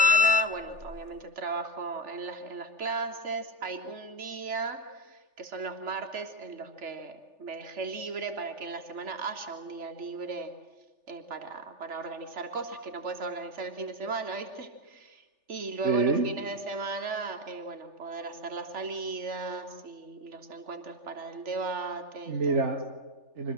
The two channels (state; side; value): late; left; 3.4 ms